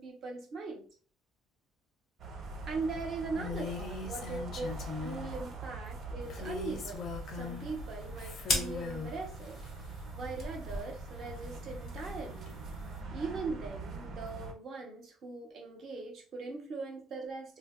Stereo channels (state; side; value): normal; both; correlation 0.62